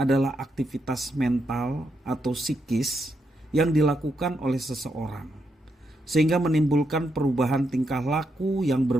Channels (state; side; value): normal; both; correlation 0.81